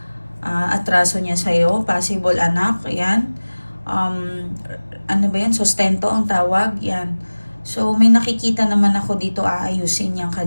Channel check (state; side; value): inverted; both; correlation -1.00